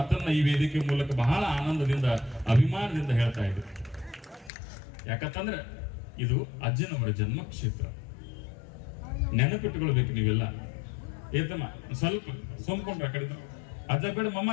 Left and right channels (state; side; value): drops out; right; at 4.5 s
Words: ಈ ವೇದಿಕೆ ಮೂಲಕ ಬಹಳ ಆನಂದದಿಂದ, ಅಭಿಮಾನದಿಂದ ಹೇಳ್ತಾ ಇದ್ರು. ಯಾಕಂತಂದ್ರೆ ಇದು ಅಜ್ಜನವರ ಜನ್ಮ ಕ್ಷೇತ್ರ. ನೆನಪಿಟ್ಟುಕೊಳ್ಬೇಕು ನೀವೆಲ್ಲ. ಏತಮ್ಮ ಸ್ವಲ್ಪ ಸೋಮ್ಕೊಂಡ್ರ ಕಡಿದ ಅಜ್ಜ ಬೇಡ